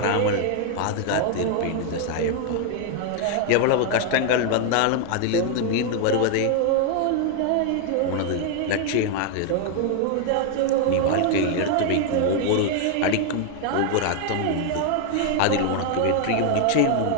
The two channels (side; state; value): both; different; correlation 0.00